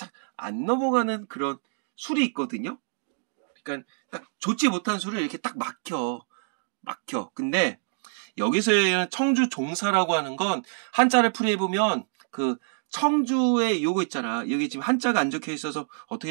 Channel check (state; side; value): silent; left; digital silence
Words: 안 넘어가는 그런 술이 있거든요. 그러니까 딱 좋지 못한 술을 이렇게 딱 막혀. 근데 여기서의 청주 종사라고 하는 건 한자를 풀이해보면 그 청주의 요거 있잖아. 여기 지금 한자가 안 적혀 있어서